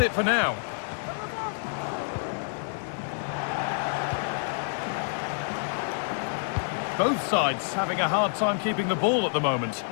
it for now. Both sides having a hard time keeping the ball at the moment.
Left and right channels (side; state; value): right; silent; 59 dB below the other